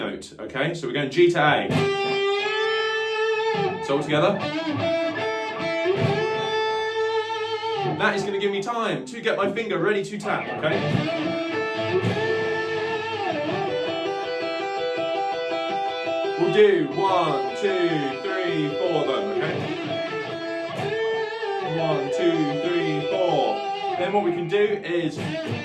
Okay, so we're going G to A. So all together. That is going to give me time to get my finger ready to tap, okay? We'll do 1, 2, 3, 4 of them, okay? 1, 2, 3, 4. Then what we can do is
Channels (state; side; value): identical; both; correlation 1.00